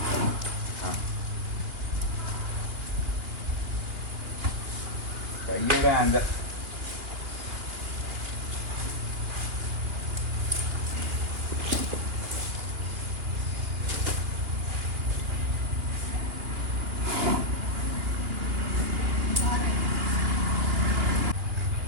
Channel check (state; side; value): late; left; 2.9 ms